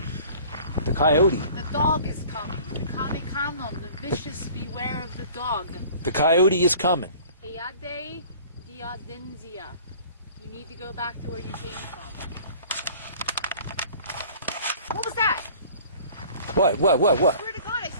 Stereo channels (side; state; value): both; inverted; correlation -0.48